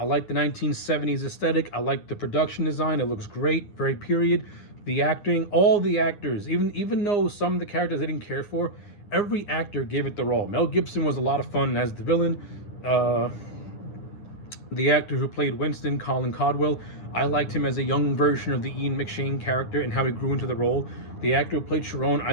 like the 1970s aesthetic. I like the production design. It looks great, very period. The acting, all the actors, even though some of the characters I didn't care for, every actor gave it their all. Mel Gibson was a lot of fun as the villain. The actor who played Winston, Colin Caldwell, I liked him as a young version of the Ian McShane character and how he grew into the role. The actor who played Sharon,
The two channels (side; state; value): right; late; 9.7 ms